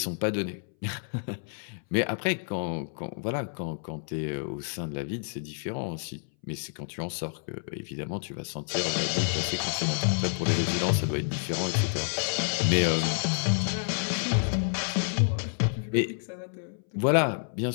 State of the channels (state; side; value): silent; right; 59 dB below the other